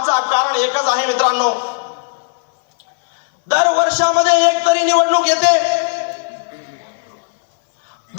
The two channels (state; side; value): silent; right; 64 dB below the other